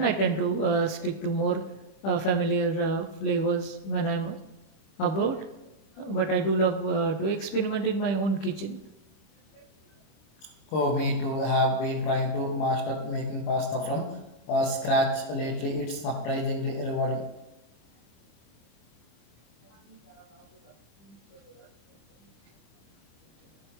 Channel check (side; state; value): right; late; 26 ms